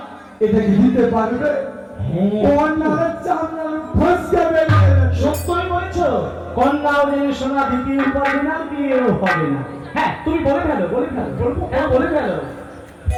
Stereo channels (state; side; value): identical; both; correlation 1.00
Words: এটা কি দিতে পারবে? কোন না চামড়া ফসকে বেরিয়ে গেছে। সত্যই বলেছো, কন্যা ওদের সোনা দ্বিতীয় পাবে না, বিয়েও হবে না। হ্যাঁ তুমি বলে ফেলো, বলে ফেলো, বলবো, হ্যাঁ বলে ফেলো।